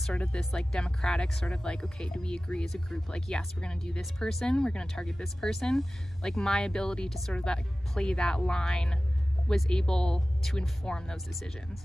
of this like democratic sort of like, okay, do we agree as a group, like yes, we're gonna do this person, we're gonna target this person, like my ability to sort of that play that line was able to inform those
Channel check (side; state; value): both; normal; correlation 0.97